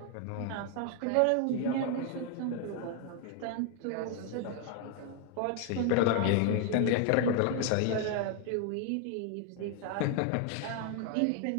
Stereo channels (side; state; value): both; different; correlation 0.00